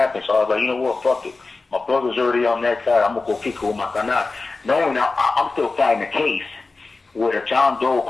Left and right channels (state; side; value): quieter; right; 3.8 dB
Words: So I was like, you know what, fuck it. My brother's already on that side. I'm going to go kick it with my canal. Knowing I'm still fighting a case with a John Doe